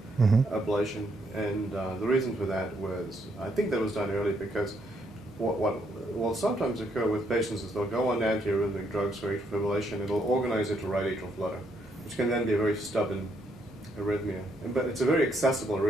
ablation, and the reason for that was, I think that was done early because what will sometimes occur with patients is they'll go on antiarrhythmic drugs for atrial fibrillation, it'll organize into right atrial flutter, which can then be a very stubborn arrhythmia. But it's a very accessible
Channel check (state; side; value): normal; both; correlation 0.74